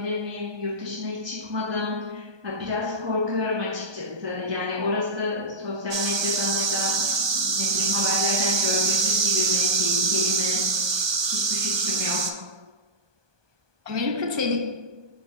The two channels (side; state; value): left; late; 1.2 ms